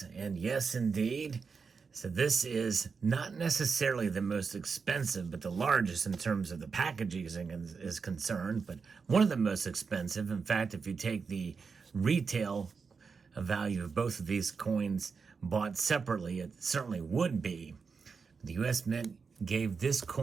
And yes, indeed. So this is not necessarily the most expensive, but the largest in terms of the packaging is concerned, but one of the most expensive. In fact, if you take the retail value of both of these coins bought separately, it certainly would be. The U.S. Mint gave this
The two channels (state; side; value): quieter; left; 5.3 dB